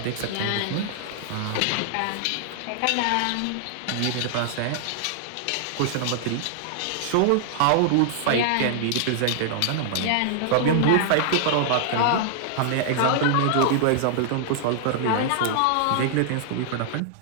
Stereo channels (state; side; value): different; both; correlation -0.01